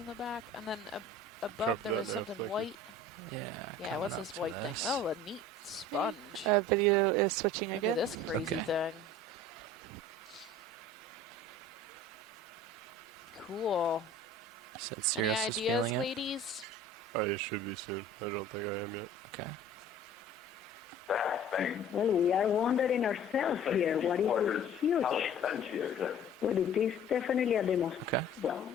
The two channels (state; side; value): normal; both; correlation 0.46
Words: the back, and then above there was something white. Yeah. Yeah, what's this white thing? Oh, a neat sponge. Video is switching Look again. at this crazy Okay. thing. Cool. Said Any Cirrus is ideas, feeling it. ladies? I should be soon. I don't think I am yet. Okay. Well, we are wondering ourselves here. What is this huge? Well, it is definitely a demo. Okay. Well,